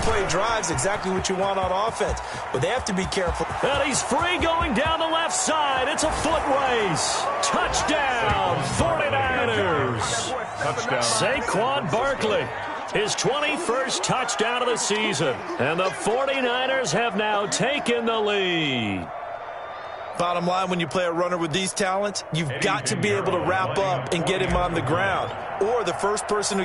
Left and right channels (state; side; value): identical; both; correlation 1.00